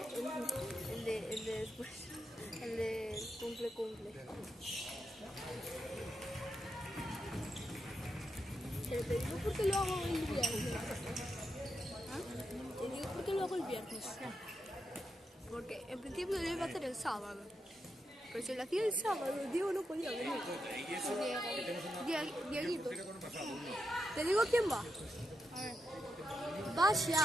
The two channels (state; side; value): normal; both; correlation 0.85